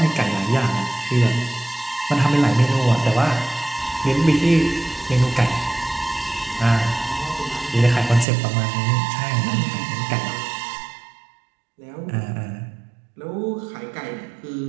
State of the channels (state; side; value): drops out; left; at 8.2 s